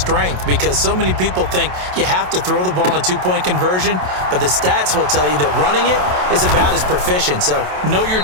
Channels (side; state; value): left; late; 27 ms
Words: Because so many people think you have to throw the ball in a two-point conversion, but the stats will tell you that running it is about as proficient. So know your